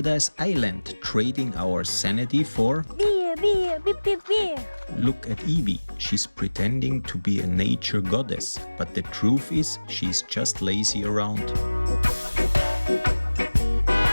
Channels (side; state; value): both; inverted; correlation -1.00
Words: Island, trading our sanity for beer, beer. Look at Eivie. She's pretending to be a nature goddess, but the truth is she's just lazy around.